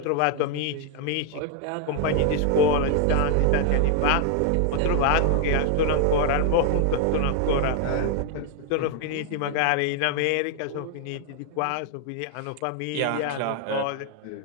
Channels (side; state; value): both; different; correlation 0.00